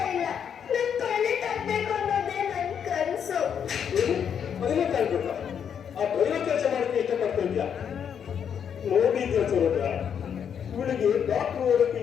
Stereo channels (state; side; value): quieter; right; 8.0 dB